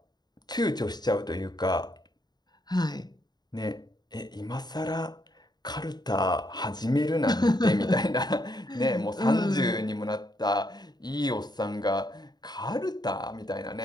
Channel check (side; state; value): right; late; 0.20 ms